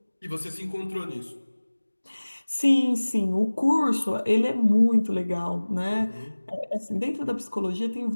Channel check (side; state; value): both; inverted; correlation -1.00